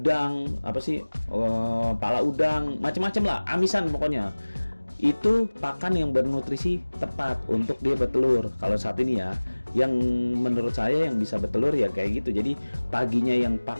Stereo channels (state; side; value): inverted; both; correlation -1.00